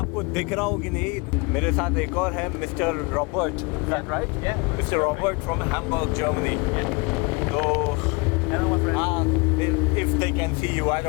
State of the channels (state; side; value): quieter; right; 28.3 dB